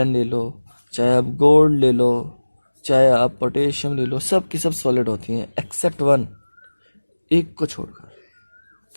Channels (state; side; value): inverted; both; correlation -1.00